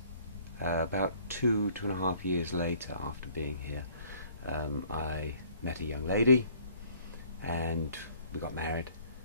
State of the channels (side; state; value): both; inverted; correlation -0.57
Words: about 2.5 years later, after being here, I met a young lady and we got married,